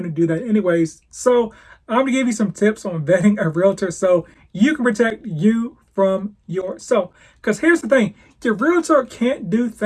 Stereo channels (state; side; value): identical; both; correlation 1.00